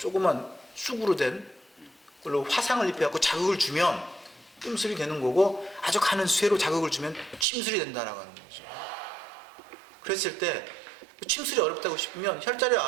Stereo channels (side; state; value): left; drops out; at 7.5 s